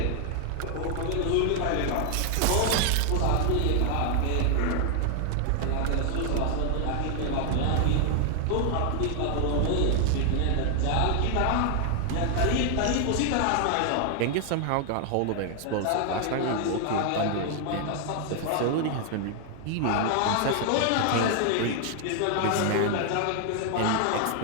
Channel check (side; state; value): both; different; correlation 0.00